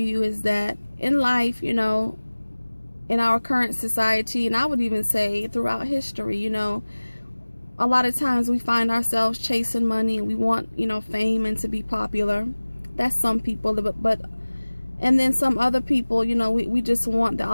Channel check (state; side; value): inverted; both; correlation -1.00